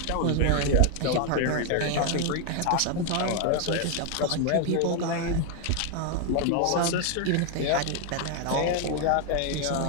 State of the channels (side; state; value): both; different; correlation 0.00